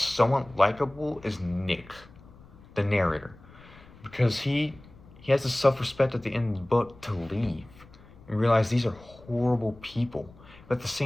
likable is Nick, the narrator, because he has the self-respect at the end of the book to leave and realize these are horrible people. But at the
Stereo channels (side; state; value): left; noise; rumble, 22 dB below the sound